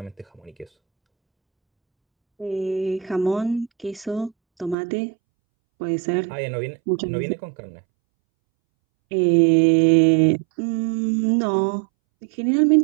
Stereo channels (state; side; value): drops out; left; at 4.8 s